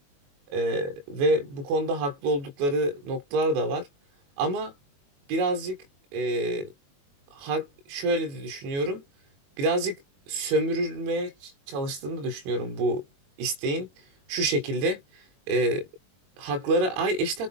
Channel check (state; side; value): late; left; 21 ms